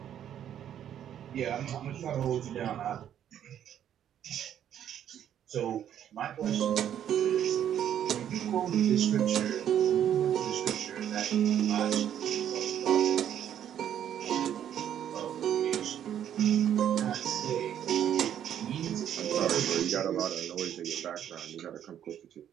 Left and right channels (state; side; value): quieter; left; 10.1 dB